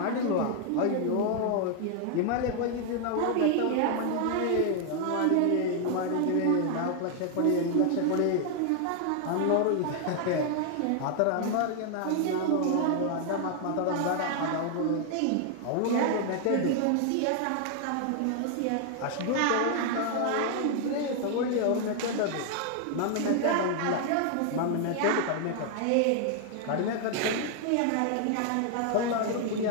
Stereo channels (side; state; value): both; different; correlation 0.00